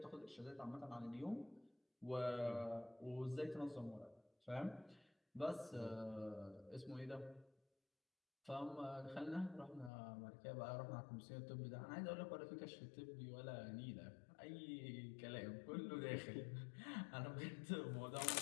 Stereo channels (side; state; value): right; drops out; at 9.9 s